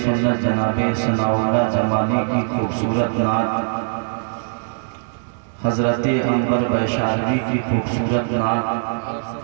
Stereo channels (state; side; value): silent; left; 65 dB below the other